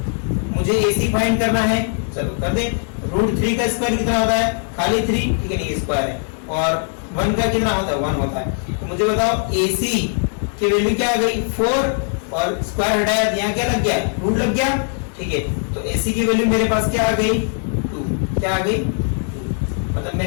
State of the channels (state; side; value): silent; right; 57 dB below the other